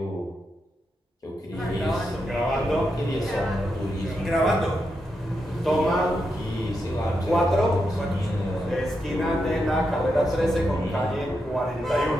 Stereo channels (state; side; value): normal; both; correlation 0.85